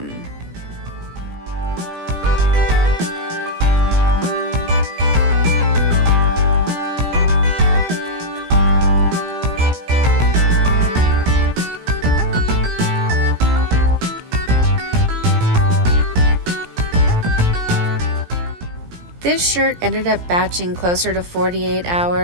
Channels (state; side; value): late; left; 17 ms